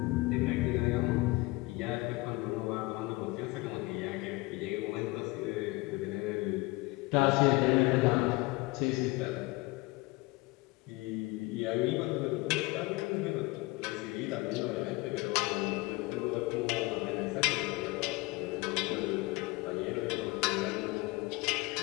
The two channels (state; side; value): quieter; right; 22.6 dB